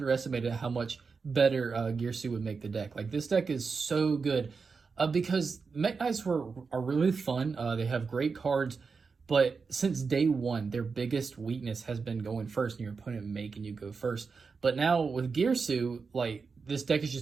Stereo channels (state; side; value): quieter; left; 5.0 dB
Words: how much better Gearsu would make the deck. Like, this deck is so good because Mekk-Knights are really fun. They have great cards, but since day one, their biggest weakness has been going first and your opponent making you go first. But now with Gearsu, like, this deck is